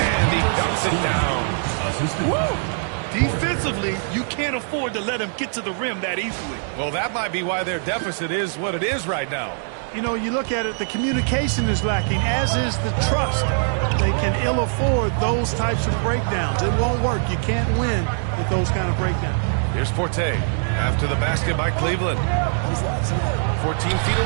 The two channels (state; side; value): silent; left; 62 dB below the other